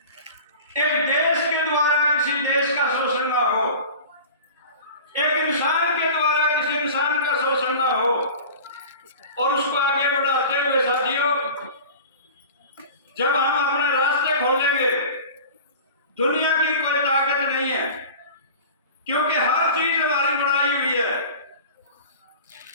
एक देश के द्वारा किसी देश का शोषण ना हो, एक इंसान के द्वारा किसी इंसान का शोषण ना हो। और उसको आगे बढ़ाते हुए साथियों, जब हम अपने रास्ते खोलेंगे, दुनिया की कोई ताकत नहीं है, क्योंकि हर चीज हमारी बनाई हुई है।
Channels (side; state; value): both; inverted; correlation -0.37